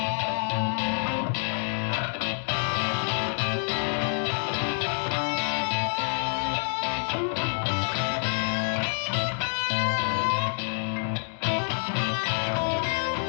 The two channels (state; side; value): silent; right; digital silence